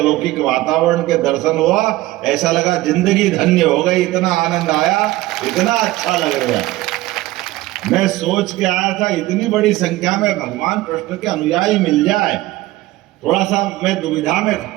वातावरण के दर्शन हुआ। ऐसा लगा जिंदगी धन्य हो गई, इतना आनंद आया, इतना अच्छा लग रहा। मैं सोच के आया था इतनी बड़ी संख्या में भगवान कृष्ण के अनुयायी मिल जाए, थोड़ा सा मैं दुविधा में था।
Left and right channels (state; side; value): quieter; left; 17.5 dB